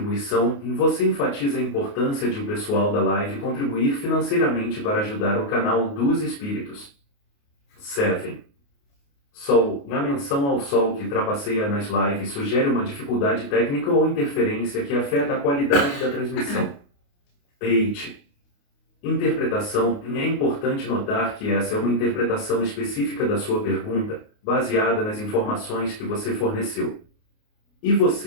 Você enfatiza a importância de o pessoal da live contribuir financeiramente para ajudar o canal dos espíritos. 7. Sol. Na menção ao Sol que trapaceia nas lives sugere uma dificuldade técnica ou interferência que afeta a qualidade da transmissão. 8. Interpretação. É importante notar que essa é uma interpretação específica da sua pergunta, baseada nas informações que você forneceu. E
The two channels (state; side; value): late; right; 28 ms